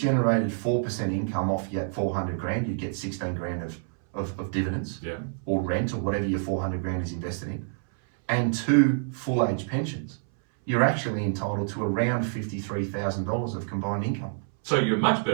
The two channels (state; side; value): silent; left; 60 dB below the other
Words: 4% income off yet 400 grand, you'd get 16 grand of dividends, or rent, or whatever your 400 grand is invested in, and 2 full age pensions. You're actually entitled to around $53,000 of combined income. So you're much